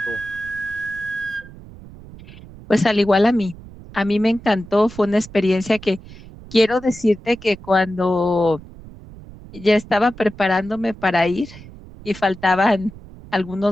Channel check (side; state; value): right; noise; rumble, 18 dB below the sound